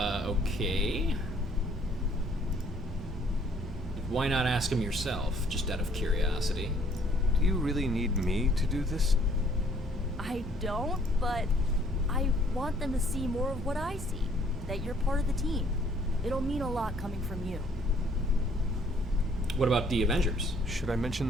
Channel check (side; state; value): both; normal; correlation 0.61